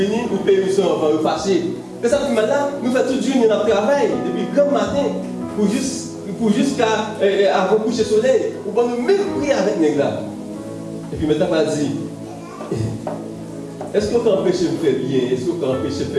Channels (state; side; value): identical; both; correlation 1.00